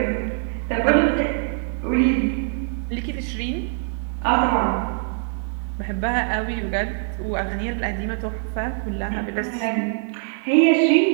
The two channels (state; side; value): silent; left; 63 dB below the other